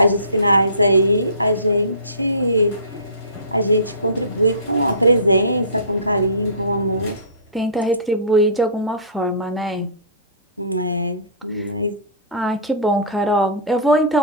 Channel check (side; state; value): both; inverted; correlation -0.34